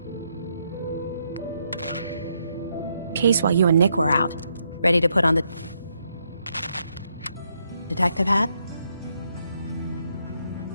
case while you and Nick were out. Ready to put on the detective hat?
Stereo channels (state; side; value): inverted; both; correlation -0.77